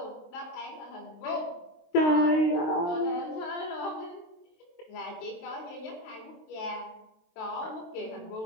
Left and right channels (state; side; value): late; right; 23 ms